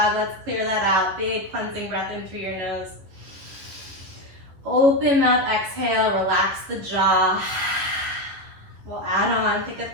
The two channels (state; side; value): late; left; 11 ms